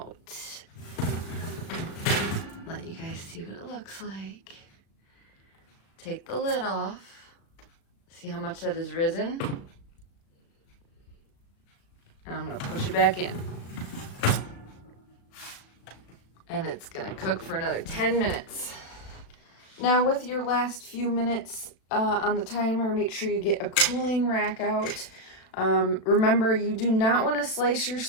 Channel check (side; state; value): right; late; 36 ms